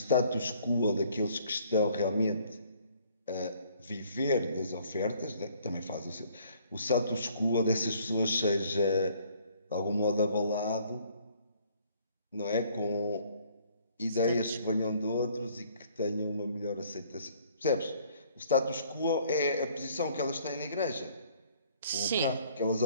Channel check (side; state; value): both; inverted; correlation -0.60